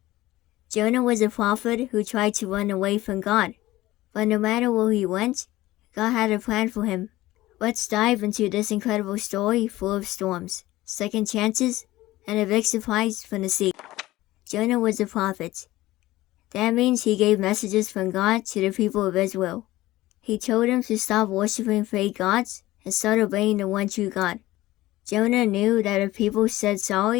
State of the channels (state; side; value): quieter; right; 17.2 dB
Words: Jonah was a prophet who tried to run away from God. But no matter where he went, God had a plan for him. Let's dive into this incredible story full of storms, second chances, and a big surprise from the sea. Jonah was a prophet. That means he gave messages from God to the people of Israel. He told them to stop worshiping fake gods and start obeying the one true God. Jonah knew that if people said